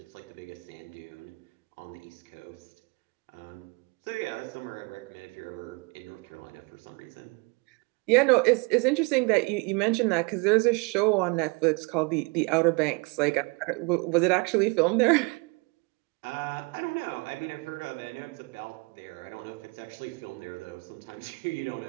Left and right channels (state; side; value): quieter; left; 29.6 dB